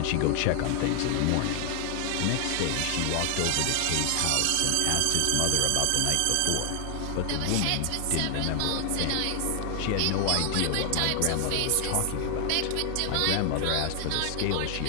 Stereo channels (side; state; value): both; different; correlation 0.00